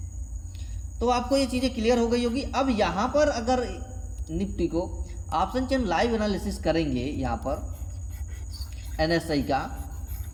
तो आपको ये चीज़ें क्लियर हो गई होगी। अब यहाँ पर अगर निफ्टी को ऑप्शन चेन लाइव एनालिसिस करेंगे यहाँ पर NSI का,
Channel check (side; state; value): both; identical; correlation 1.00